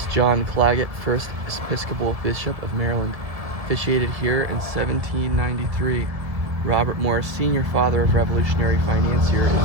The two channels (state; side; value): late; left; 1.6 ms